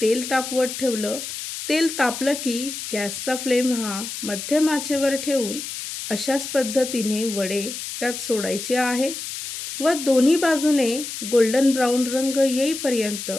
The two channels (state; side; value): noise; left; hiss, 7 dB below the sound